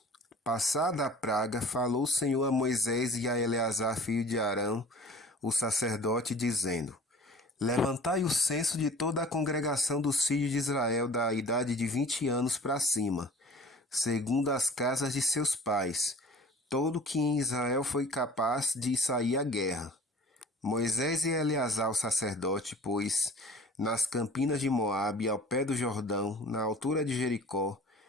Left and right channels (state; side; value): normal; both; correlation 0.46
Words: Passada a praga, falou o Senhor a Moisés e a Eleazar, filho de Arão, o sacerdote, dizendo: Levantai o censo de toda a congregação dos filhos de Israel da idade de 20 anos para cima, segundo as casas de seus pais, todo que em Israel foi capaz de sair à guerra. Moisés e Eleazar, o sacerdote, pois, nas campinas de Moabe, ao pé do Jordão, na altura de Jericó,